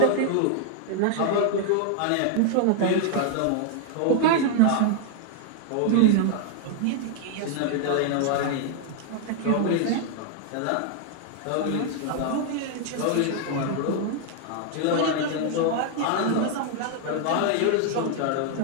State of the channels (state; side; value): different; both; correlation 0.00